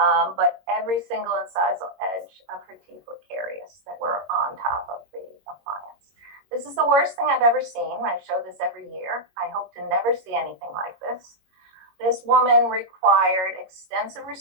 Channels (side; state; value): left; late; 22 ms